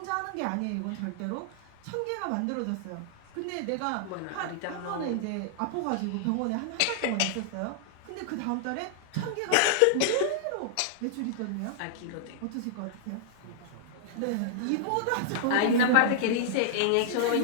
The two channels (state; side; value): different; both; correlation -0.01